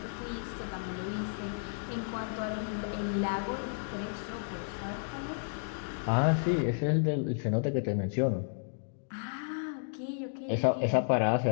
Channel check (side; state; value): right; silent; digital silence